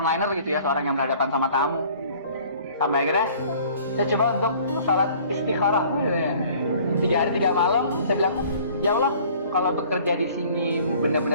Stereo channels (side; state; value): both; inverted; correlation -0.52